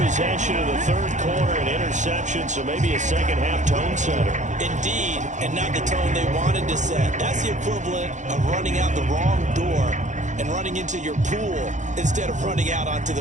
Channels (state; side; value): late; left; 0.35 ms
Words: of the 3rd quarter, an interception, so maybe a second-half tone setter. Indeed, and not the tone they wanted to set. That's the equivalent of running out the wrong door and running into your pool instead of running out onto